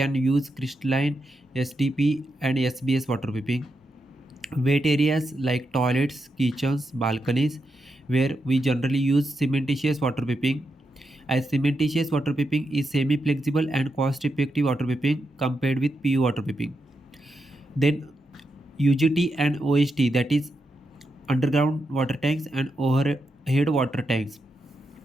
use crystalline SDP and SBS water piping. Wet areas like toilets, kitchens, balconies, where we generally use cementitious water piping. As cementitious water piping is semi-flexible and cost-effective water piping compared with PU water piping. Then UGT and OHT, that is underground water tanks and overhead water tanks,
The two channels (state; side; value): normal; both; correlation 0.85